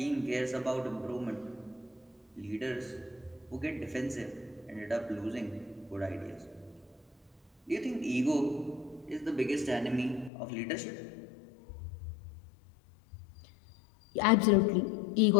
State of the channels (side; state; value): right; drops out; at 10.3 s